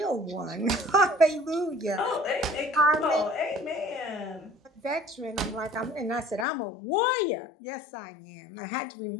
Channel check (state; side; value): drops out; right; at 6.5 s